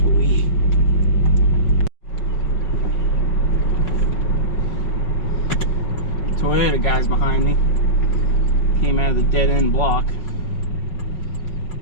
Toyota guys behind me. Came out of the dead end block.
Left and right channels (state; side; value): late; right; 5.4 ms